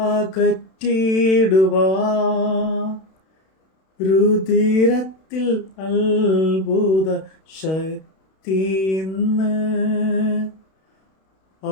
രുധിരത്തിൽ അത്ഭുത ശക്തി ഇന്ന്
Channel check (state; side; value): late; right; 31 ms